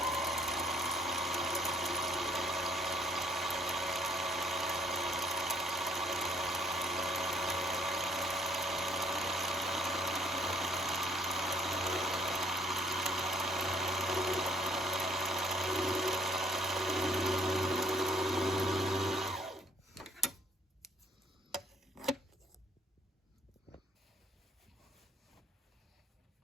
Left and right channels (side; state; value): both; normal; correlation 0.63